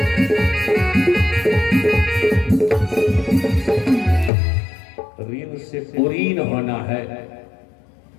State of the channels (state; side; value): drops out; right; at 4.3 s